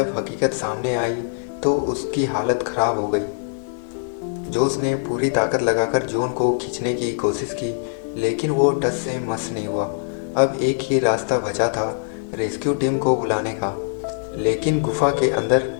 हकीकत सामने आई तो उसकी हालत खराब हो गई। जोस ने पूरी ताकत लगाकर जॉन को खींचने की कोशिश की, लेकिन वो टस से मस नहीं हुआ। अब एक ही रास्ता बचा था, रेस्क्यू टीम को बुलाने का, लेकिन गुफा के अंदर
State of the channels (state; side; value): silent; right; digital silence